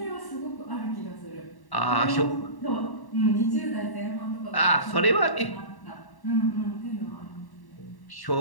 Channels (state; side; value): late; right; 1.1 ms